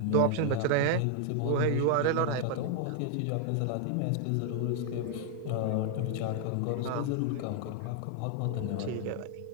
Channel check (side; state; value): both; different; correlation 0.00